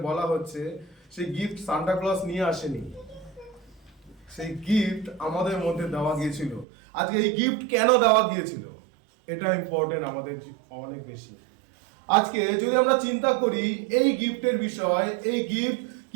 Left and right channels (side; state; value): left; drops out; at 6.7 s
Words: বলা হচ্ছে, সেই গিফট সান্টা ক্লস নিয়ে আসেনি, সেই গিফট আমাদের মধ্যে দেওয়া গিয়েছিল। আজকে এই গিফট কেন দেওয়া গিয়েছিল এটা ইম্পর্টেন্ট আমাদের অনেক বেশি। আজকে যদি আমরা চিন্তা করি এই গিফটের বিষয়, এই গিফট